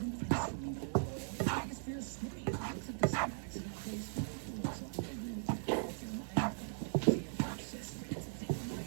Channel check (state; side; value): silent; left; 52 dB below the other